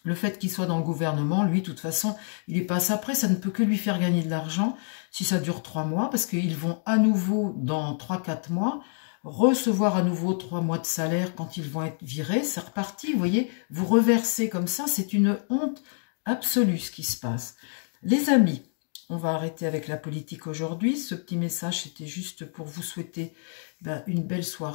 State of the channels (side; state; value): right; silent; 60 dB below the other